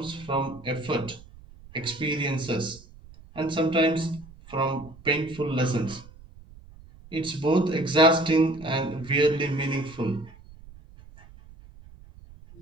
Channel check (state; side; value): noise; right; rumble, 21 dB below the sound